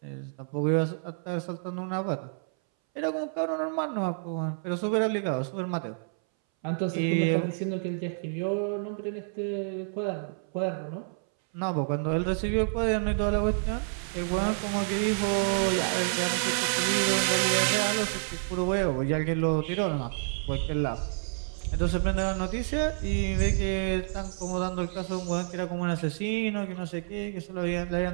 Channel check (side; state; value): left; silent; 59 dB below the other